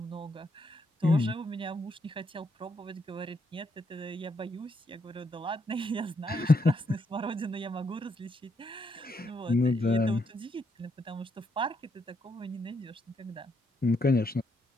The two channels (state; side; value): normal; both; correlation 0.76